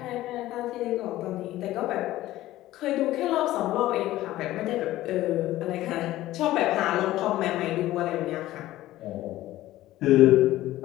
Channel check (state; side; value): quieter; right; 15.5 dB